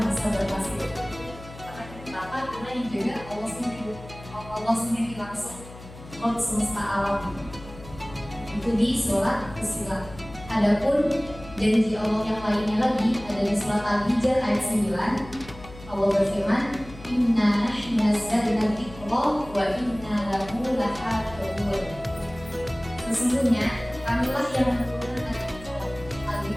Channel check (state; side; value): noise; left; hum, 17 dB below the sound